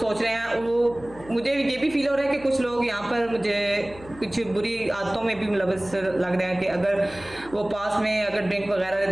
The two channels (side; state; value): left; noise; hum, 19 dB below the sound